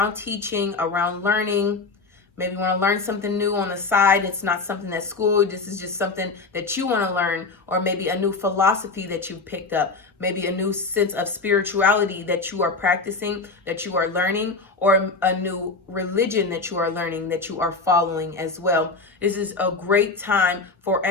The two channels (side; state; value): right; quieter; 4.0 dB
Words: teaching, around learning. Maybe you want to learn something new on the side. It's not something that's school. This is just something that you want to learn, or maybe a new philosophy that you've picked up, maybe a new sense of spirituality that you are practicing, that you are learning, or a new religion that you are learning, that you are following as well. This is a great time for